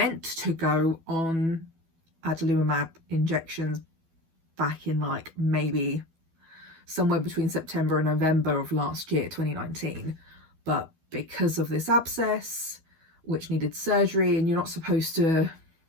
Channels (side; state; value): left; late; 12 ms